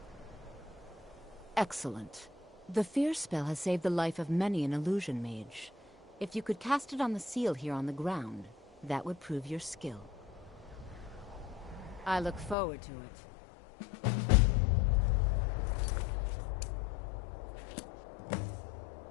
Excellent. The fear spell has saved the life of many an illusion mage. If you could cast it on the seal here on the ground, that would prove your skill. I look forward to it.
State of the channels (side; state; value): right; drops out; at 12.6 s